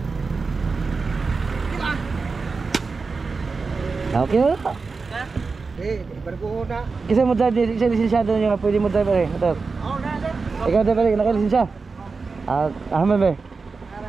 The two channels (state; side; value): quieter; left; 4.4 dB